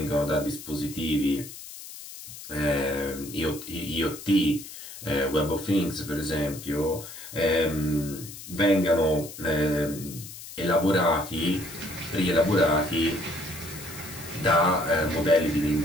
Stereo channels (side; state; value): left; noise; hiss, 13 dB below the sound